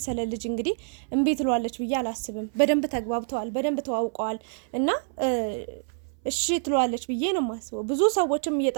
ልጅ እንግዲህ እምቢ ትሏለች ብዬ አላስብም። በደንብ ተግባብተዋል፣ በደንብ ተዋውቀዋል እና እሺ ትሏለች ብዬ ነው የማስበው። ብዙ ሰዎችም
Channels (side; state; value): left; silent; 60 dB below the other